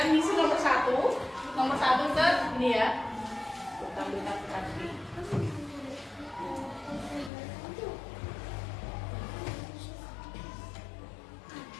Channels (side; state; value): right; drops out; at 7.3 s